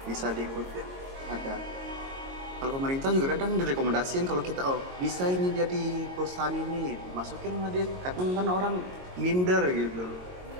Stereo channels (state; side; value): late; left; 22 ms